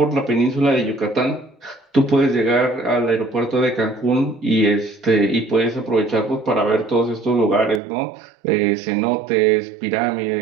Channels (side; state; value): left; drops out; at 7.8 s